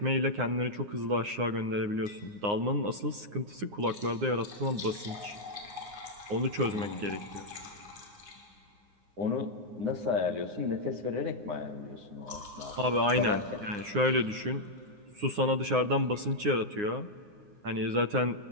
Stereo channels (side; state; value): left; late; 9.7 ms